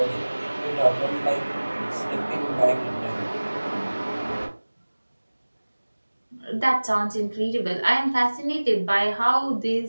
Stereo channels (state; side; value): inverted; both; correlation -1.00